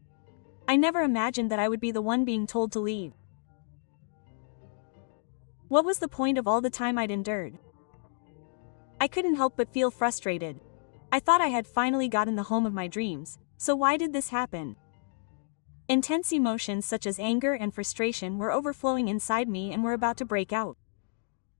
I never imagined that I would be the one being told to leave. What was the point of all the time I'd endured? I couldn't help but feel frustrated. I thought I had finally gotten the home of my dreams, so why did this happen? Intense emotions such as anger and frustration were overflowing inside me and were about to break out.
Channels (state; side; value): silent; right; digital silence